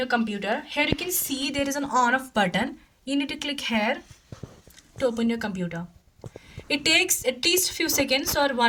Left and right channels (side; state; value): both; identical; correlation 1.00